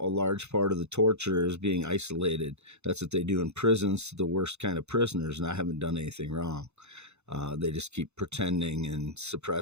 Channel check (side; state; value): left; late; 0.81 ms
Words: large part of the torture is being isolated. That's what they do in prisons to the worst kind of prisoners, and I haven't done anything wrong. They just keep pretending and